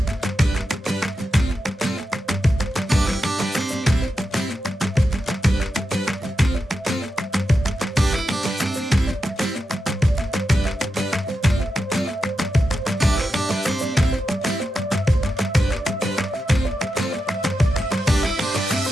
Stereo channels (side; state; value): both; normal; correlation 0.88